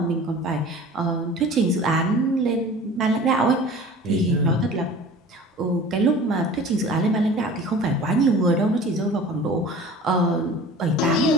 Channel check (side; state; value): both; normal; correlation 0.42